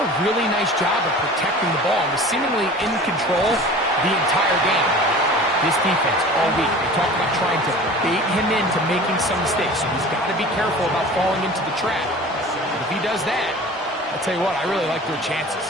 really nice job of protecting the ball and was seemingly in control the entire game. This defense all week, they talk about trying to bait him into making some mistakes, so he's got to be careful about falling into the trap. But if he does that, I'll tell you what, I really like their chances.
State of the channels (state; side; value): normal; both; correlation 0.40